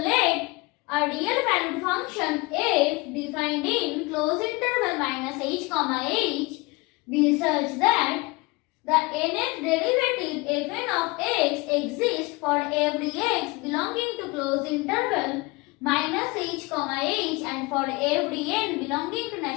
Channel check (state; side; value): quieter; right; 25.0 dB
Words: a real valued function f defined in closed interval minus h comma h be such that the nth derivative fn of x exists for every x belonging to closed interval minus h comma h and for every n belonging to